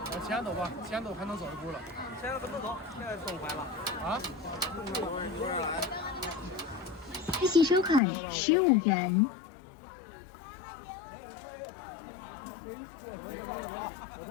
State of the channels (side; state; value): right; drops out; at 8.0 s